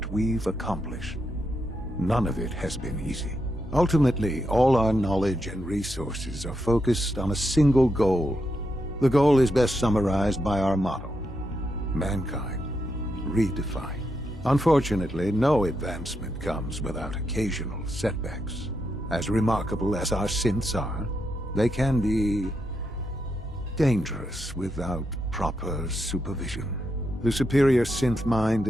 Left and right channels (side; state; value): both; normal; correlation 0.83